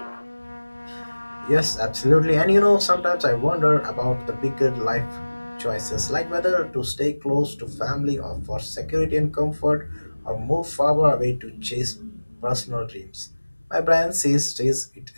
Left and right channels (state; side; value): inverted; both; correlation -1.00